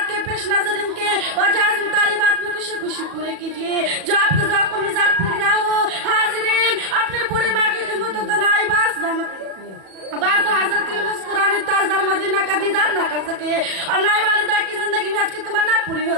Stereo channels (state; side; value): late; left; 37 ms